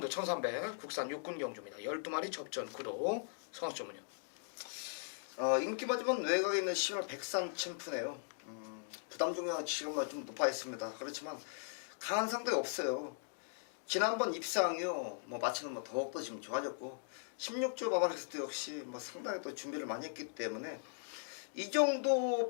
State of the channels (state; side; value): silent; right; digital silence